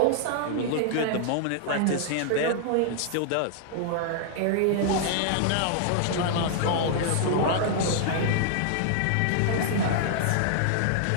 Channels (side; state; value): both; different; correlation -0.01